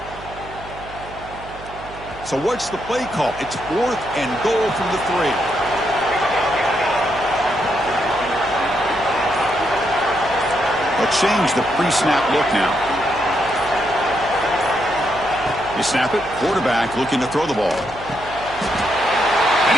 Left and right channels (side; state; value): right; noise; hum, 16 dB below the sound